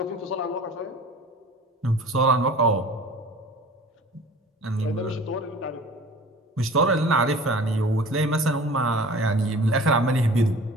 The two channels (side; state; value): both; normal; correlation 0.43